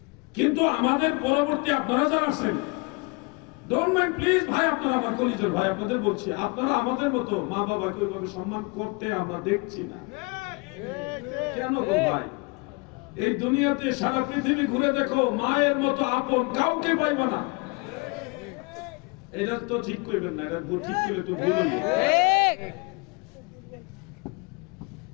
কিন্তু আমাদের পরবর্তী আপনারা যারা আছেন, ডোন্ট মাইন্ড প্লিজ ভাই, আপনারা আমার কলিজার ভাই, আপনাদের বলছি, আপনারা আমাদের মতো মা বাবাকে ওইভাবে সম্মান করতে আমরা দেখছি না। কেন গো ভাই? এই দুনিয়াতে সারা পৃথিবী ঘুরে দেখো, মায়ের মতো আপন কাউকে পাইবা না। এটা তো ঠিক করবেন না, এটা ঠিক করে তো বলুন।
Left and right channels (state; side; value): quieter; right; 28.8 dB